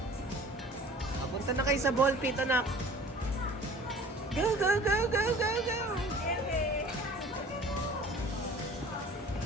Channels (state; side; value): normal; both; correlation 0.46